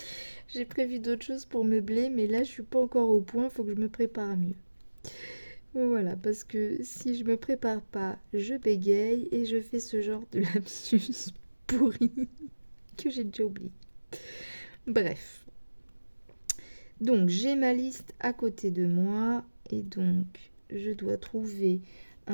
J'ai prévu d'autres choses pour meubler, mais là, je suis pas encore au point. Faut que je me prépare mieux. Voilà, parce que si je me prépare pas, je bégaye et je fais ce genre de lapsus pourri que j'ai déjà oublié. Bref. Donc, j'ai ma liste à côté de moi et donc, je dois trouver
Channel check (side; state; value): both; inverted; correlation -1.00